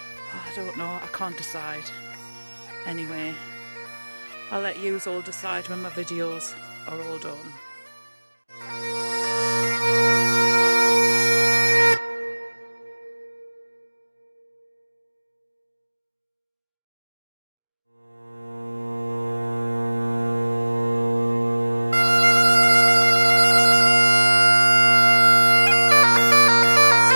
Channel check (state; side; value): inverted; both; correlation -1.00